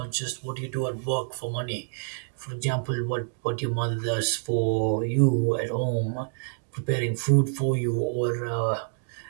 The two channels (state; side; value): silent; left; 60 dB below the other